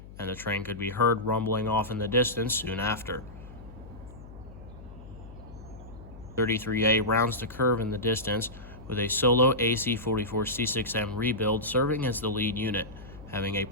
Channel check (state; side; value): noise; left; hum, 16 dB below the sound